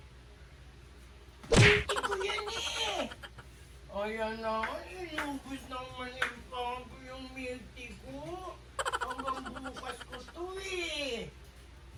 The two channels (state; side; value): identical; both; correlation 1.00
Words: Hindi ko yan eh! Ayan na, inubos naman yung Papo yung milk tea ko. Hanggang bukas ko to eh.